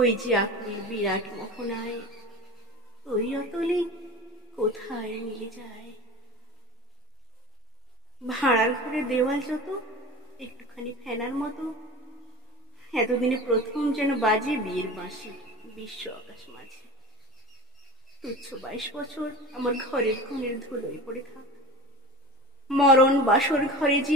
যে আকুল বিরাট মোহনায়, ওই অতলে কোথায় মিলে যায়। ভাড়ার ঘরে দেওয়াল যত একটুখানি ফেনার মতো, এতদিনে প্রথম যেন বাজে বিয়ের বাঁশি বিশ্ব আকাশ মাঝে। তুচ্ছ 22 বছর আমার ঘরের কোণের ধুলোয় পড়ে থাক। মরণ বাসর ঘরে যে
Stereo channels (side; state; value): both; normal; correlation 0.34